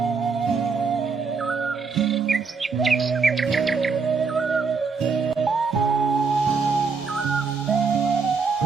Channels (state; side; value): quieter; left; 5.0 dB